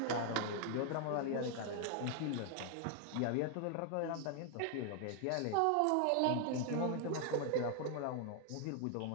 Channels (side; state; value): both; different; correlation 0.00